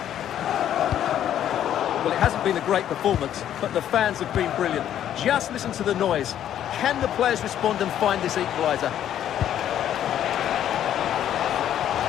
Well, it hasn't been a great performance, but the fans have been brilliant. Just listen to the noise. Can the players respond and find this equaliser?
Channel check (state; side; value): quieter; right; 10.8 dB